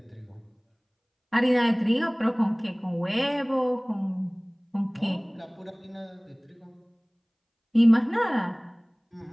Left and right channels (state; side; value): identical; both; correlation 1.00